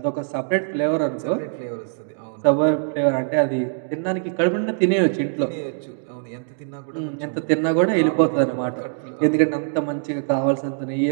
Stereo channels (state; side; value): silent; left; digital silence